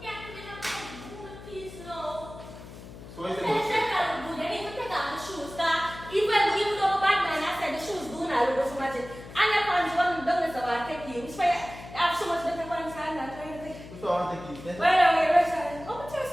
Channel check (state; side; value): noise; left; hum, 15 dB below the sound